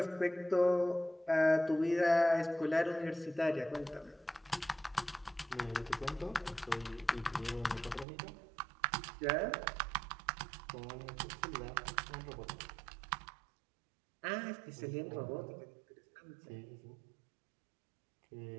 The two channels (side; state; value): left; drops out; at 8.1 s